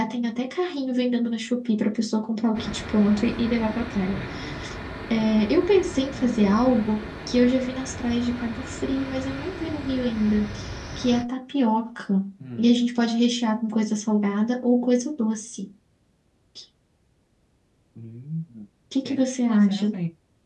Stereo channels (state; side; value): identical; both; correlation 1.00